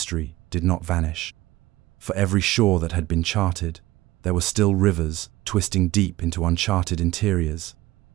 did not vanish. For every shore that had been charted, there were still rivers twisting deep into uncharted interiors,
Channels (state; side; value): quieter; left; 17.9 dB